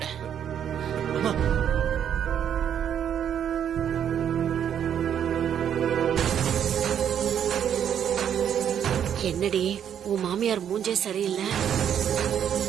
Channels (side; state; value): left; quieter; 9.1 dB